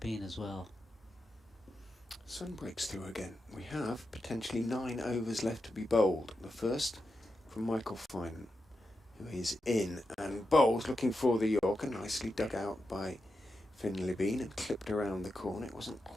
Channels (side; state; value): both; normal; correlation 0.88